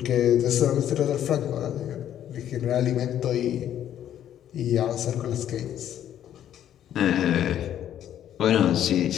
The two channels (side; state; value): right; quieter; 10.8 dB